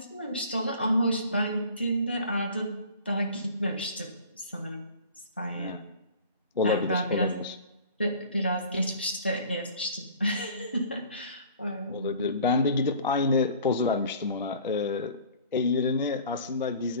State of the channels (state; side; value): inverted; both; correlation -0.45